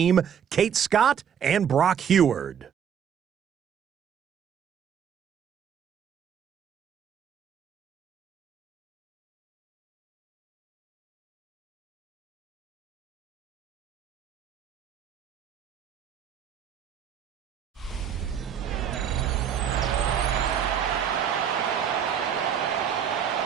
Kate Scott and Brock Heward.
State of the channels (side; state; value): left; quieter; 8.3 dB